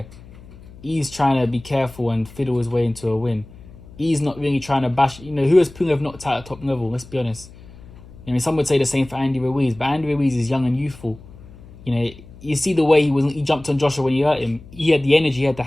he's trying to be careful and fiddle his way into a win. He's not really trying to bash. Who has Pulev knocked out at top level? Let's be honest. Some would say the same for Andy Ruiz, but Andy Ruiz is young and youthful. You see the way he jumped on Joshua when he hurt him. He had the energy, he had the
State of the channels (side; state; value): left; noise; hum, 20 dB below the sound